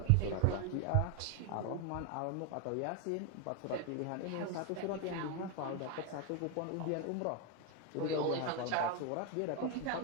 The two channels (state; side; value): different; both; correlation 0.01